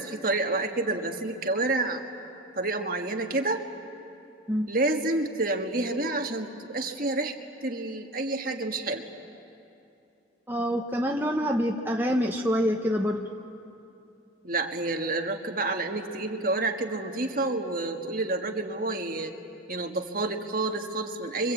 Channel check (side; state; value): both; normal; correlation 0.30